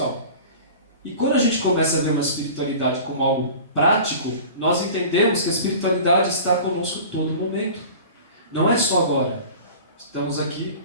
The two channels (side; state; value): both; inverted; correlation -0.39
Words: E quando a gente começa a ver uma espiritualidade como algo prático, nós entendemos que a espiritualidade está conosco todo momento. Não é só agora. Estamos aqui